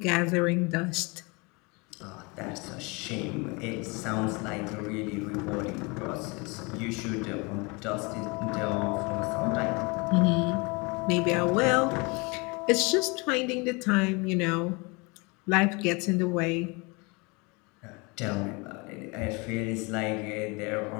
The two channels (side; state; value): right; quieter; 28.4 dB